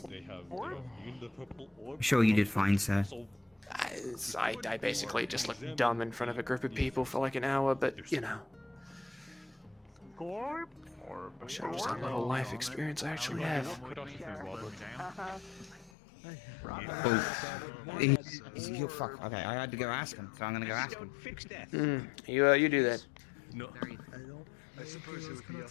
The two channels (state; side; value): drops out; right; at 15.9 s